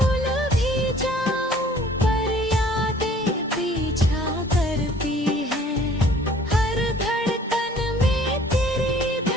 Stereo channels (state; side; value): normal; both; correlation 0.54